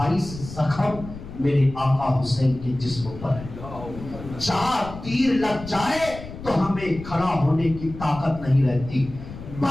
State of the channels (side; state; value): left; noise; rumble, 13 dB below the sound